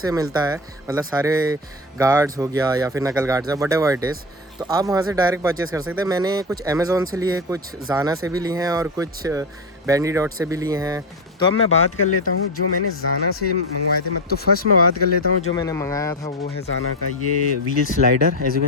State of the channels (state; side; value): normal; both; correlation 0.18